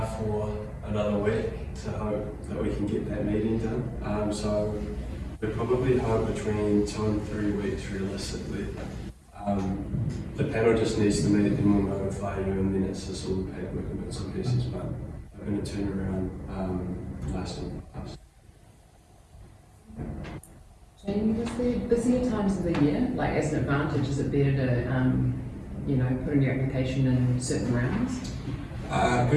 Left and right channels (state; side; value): identical; both; correlation 1.00